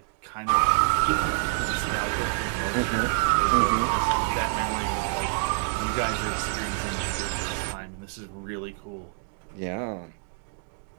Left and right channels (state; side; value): silent; left; 60 dB below the other